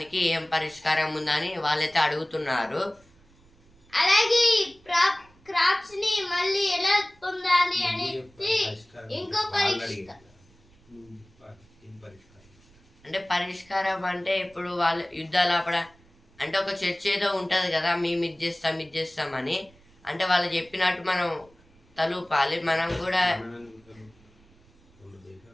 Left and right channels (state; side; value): noise; right; rumble, 29 dB below the sound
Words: ఏం పరిష్కారం ఉందని వాళ్ళైతే అడుగుతున్నారు. అలాగే క్రాప్స్ ని మళ్ళీ ఎలా పొందాలి అనేది ఇంకో అంటే పరిష్కారం అంటే ఇప్పుడు వాళ్ళు యుద్ధాలు ఆపడ అంటే ఒక చర్చ ఏదో ఉంటది కదా, మేము ఇది చేస్తామని, అంటే వాళ్ళు చెప్పినట్టు మనం తలూపాలి, మనం కూడా